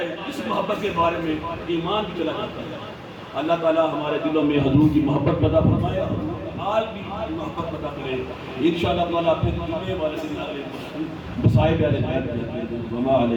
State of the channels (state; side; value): identical; both; correlation 1.00